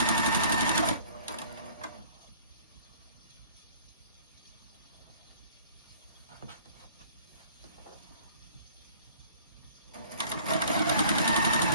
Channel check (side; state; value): both; inverted; correlation -0.52